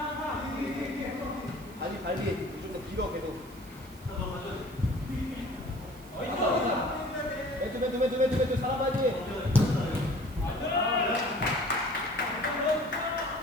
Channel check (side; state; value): right; noise; hiss, 23 dB below the sound